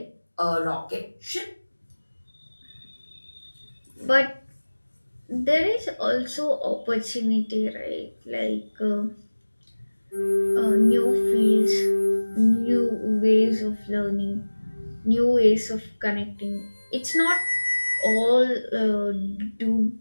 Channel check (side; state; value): both; inverted; correlation -1.00